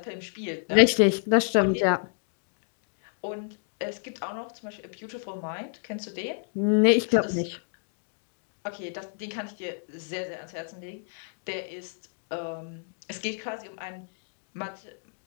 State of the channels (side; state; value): right; silent; digital silence